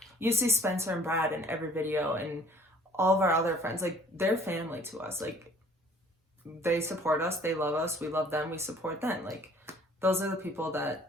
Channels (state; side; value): normal; both; correlation 0.54